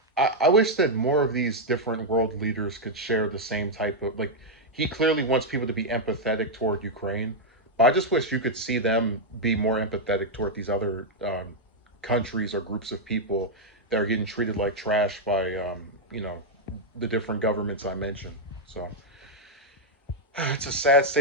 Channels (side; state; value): both; normal; correlation -0.02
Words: I wish that more of these different world leaders could share the same type of like. He clearly wants people to be empathetic toward Ukraine, but I just wish you could see them be more empathetic toward these other countries or groups of people that are getting treated like trash by the different governments I mentioned. So it's a sad